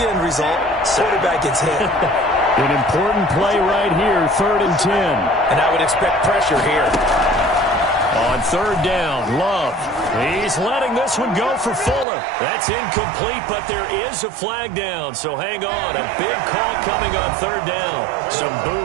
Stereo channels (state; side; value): drops out; left; at 12.1 s